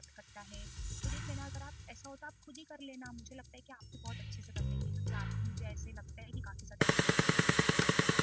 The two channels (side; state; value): both; identical; correlation 1.00